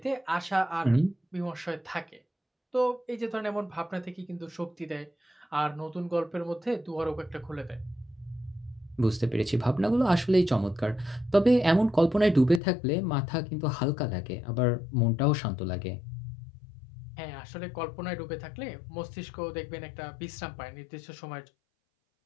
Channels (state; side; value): drops out; right; at 12.6 s